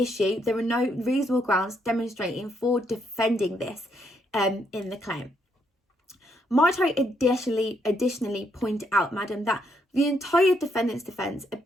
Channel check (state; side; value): normal; both; correlation 0.75